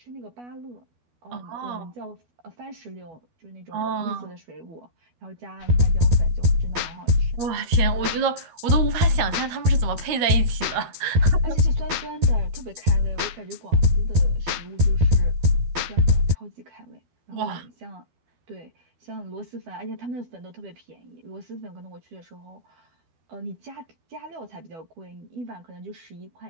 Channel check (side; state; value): left; late; 13 ms